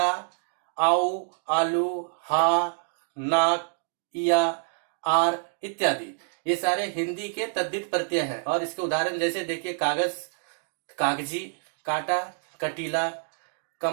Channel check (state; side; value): silent; left; digital silence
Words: आउ, आलू, हा, नाक, इया, आर इत्यादि, ये सारे हिंदी के तद्धित प्रत्यय हैं। और इसके उदाहरण जैसे देखिए कागज, कागजी, काटा, कटीला।